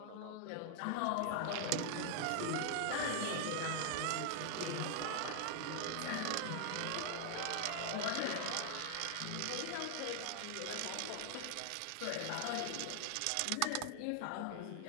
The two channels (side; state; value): both; different; correlation 0.00